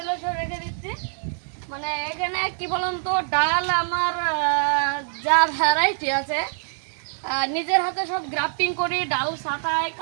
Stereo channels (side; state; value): left; silent; digital silence